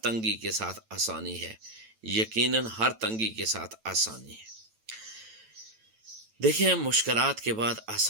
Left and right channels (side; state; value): left; late; 9.0 ms